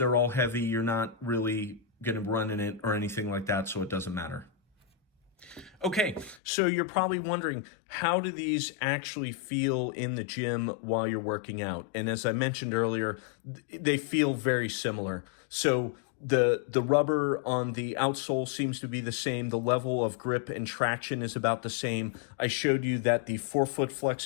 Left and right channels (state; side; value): drops out; right; at 6.4 s